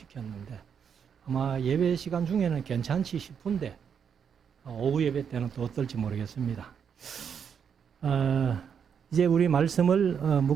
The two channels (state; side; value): quieter; left; 7.3 dB